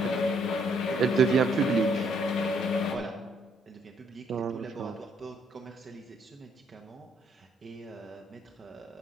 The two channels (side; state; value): both; normal; correlation 0.69